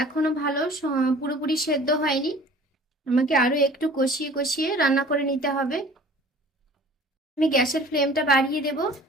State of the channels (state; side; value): normal; both; correlation 0.47